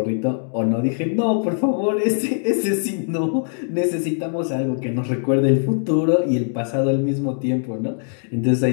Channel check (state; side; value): silent; right; digital silence